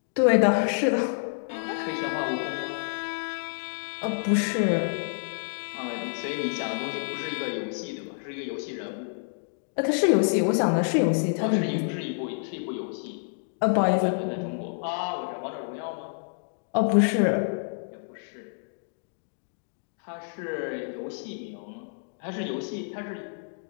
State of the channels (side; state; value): right; silent; digital silence